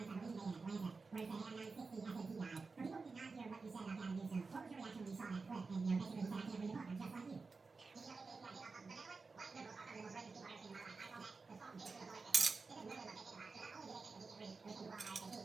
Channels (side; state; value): left; quieter; 4.3 dB